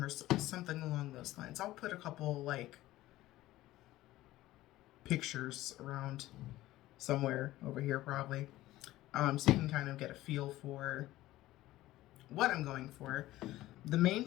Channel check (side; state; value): right; quieter; 16.2 dB